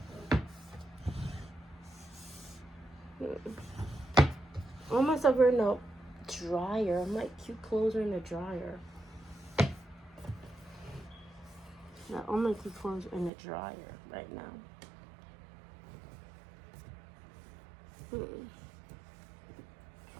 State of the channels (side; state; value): left; drops out; at 13.3 s